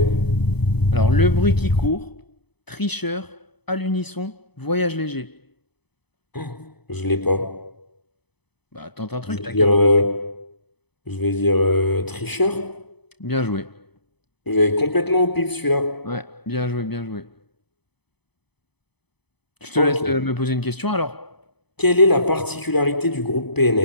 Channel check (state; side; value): late; right; 0.98 ms